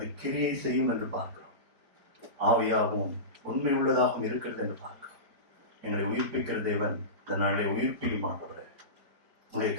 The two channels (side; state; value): left; late; 4.5 ms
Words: கிரியை செய்யும் என்று பார்க்கிறோம். ஆவியாகவும் உண்மை உள்ளதாகவும் இருக்கிறது என்று பார்க்கிறோம். எங்களை உயிர்ப்பிக்கிற தேவன் இந்த நாளை உயிர்ப்பிக்க மாட்டவரே, உங்களுடைய